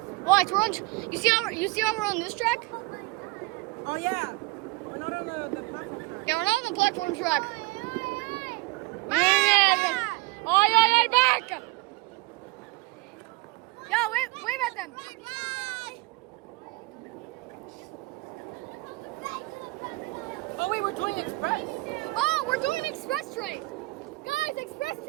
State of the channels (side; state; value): left; quieter; 23.2 dB